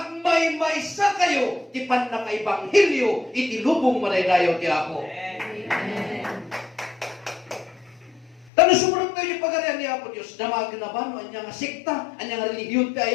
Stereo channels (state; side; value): drops out; right; at 8.5 s